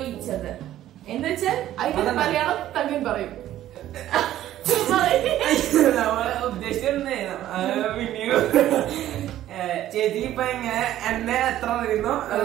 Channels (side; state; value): left; quieter; 13.0 dB